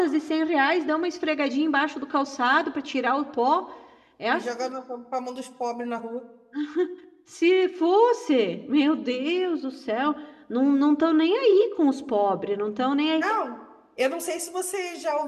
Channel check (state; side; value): identical; both; correlation 1.00